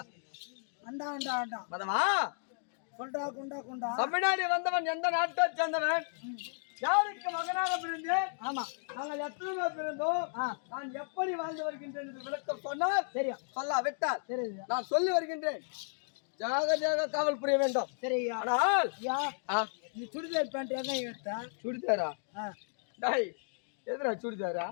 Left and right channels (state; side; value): silent; right; digital silence